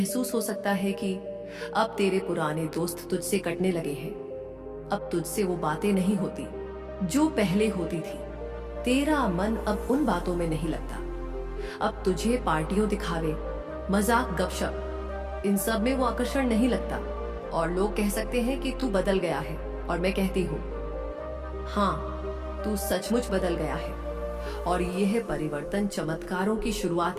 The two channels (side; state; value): both; identical; correlation 1.00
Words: हो सकता है कि अब तेरे पुराने दोस्त तुझसे कटने लगे हैं। अब तुझसे वो बातें नहीं होती जो पहले होती थी। तेरा मन अब उन बातों में नहीं लगता। अब तुझे पार्टियों, दिखावे, मजाक, गपशप, इन सब में वो आकर्षण नहीं लगता। और लोग कह सकते हैं कि तू बदल गया है, और मैं कहती हूँ, हाँ, तू सचमुच बदल गया है। और यह परिवर्तन चमत्कारों की शुरुआत